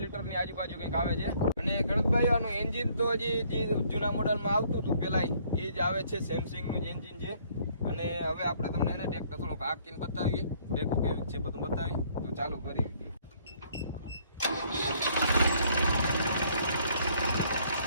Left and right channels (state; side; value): inverted; both; correlation -0.63